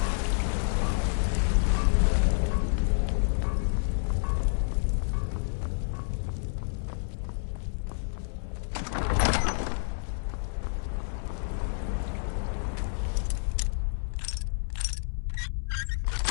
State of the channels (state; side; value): silent; right; 58 dB below the other